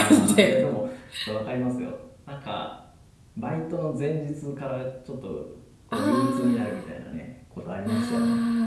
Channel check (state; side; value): identical; both; correlation 1.00